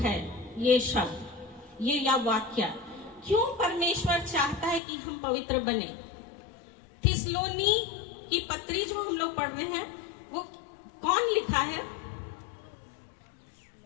ये शब्द, ये या वाक्य। क्यों परमेश्वर चाहता है कि हम पवित्र बने? थिस्सलुनी की पत्री जो हम लोग पढ़ रहे हैं वो कौन लिखा है?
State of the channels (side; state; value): right; drops out; at 4.8 s